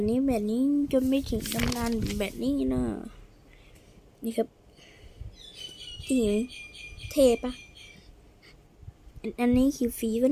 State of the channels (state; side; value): identical; both; correlation 1.00